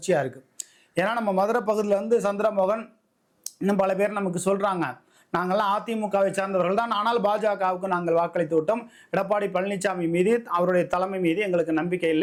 இருக்குது. ஏன்னா நம்ம மதுரை பகுதியில் சந்திரமோகன் இன்னும் பல பேர் நமக்கு சொல்கிறாங்க, நாங்கள்லாம் அதிமுகவை சார்ந்தவர்கள் தான், ஆனால் பாஜகவுக்கு நாங்கள் வாக்களித்து விட்டோம். எடப்பாடி பழனிசாமி மீது, அவருடைய தலைமை மீது எங்களுக்கு நம்பிக்கை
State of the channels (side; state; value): both; identical; correlation 1.00